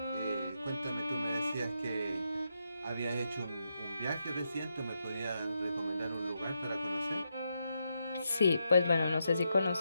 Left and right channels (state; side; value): inverted; both; correlation -0.83